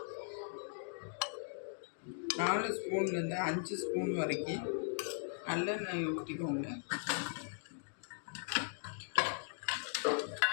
4 ஸ்பூன்லேருந்து 5 ஸ்பூன் வரைக்கும் நல்லெண்ணெய் ஊற்றிக்கோங்க.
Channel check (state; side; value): silent; right; digital silence